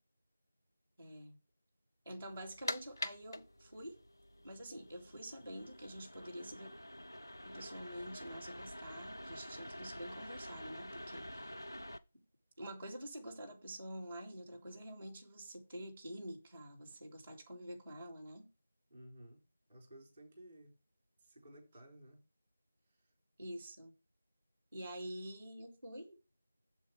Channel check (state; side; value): inverted; both; correlation -0.88